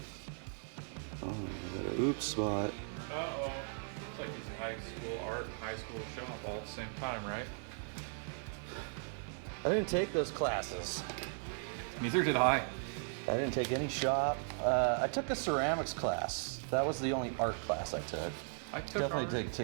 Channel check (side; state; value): left; silent; 53 dB below the other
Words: Oh, I got an oops spot. uh-oh. It's like using high school art and high school shop all at the same time, right? I didn't take those classes. Neither did I. I didn't take any shop. I took a ceramics class. That was the only art class I took. I took Definitely art. didn't